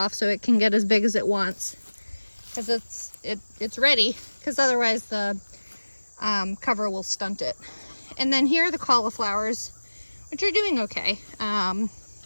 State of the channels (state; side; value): inverted; both; correlation -1.00